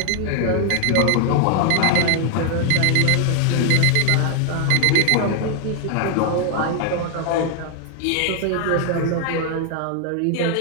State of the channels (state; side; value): different; both; correlation 0.00